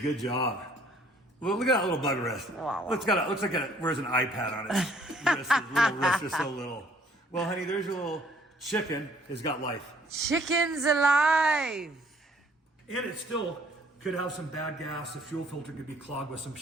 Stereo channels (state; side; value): normal; both; correlation 0.60